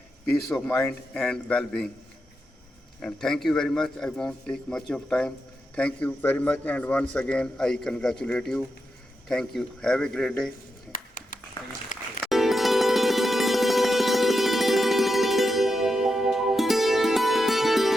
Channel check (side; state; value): both; normal; correlation 0.87